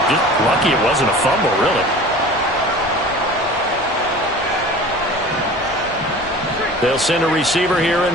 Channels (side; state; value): both; normal; correlation 0.40